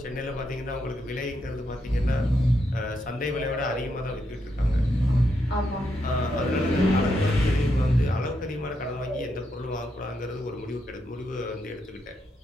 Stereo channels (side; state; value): both; normal; correlation 0.81